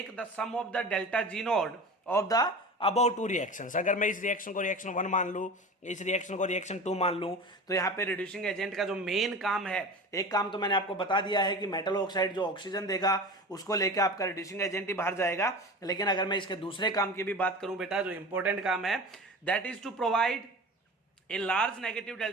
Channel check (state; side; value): normal; both; correlation 0.33